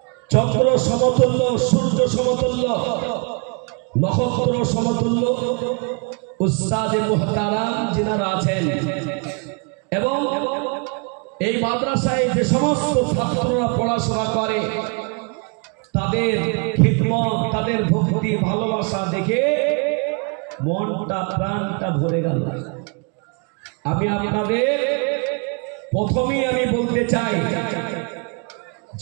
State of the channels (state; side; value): quieter; left; 36.0 dB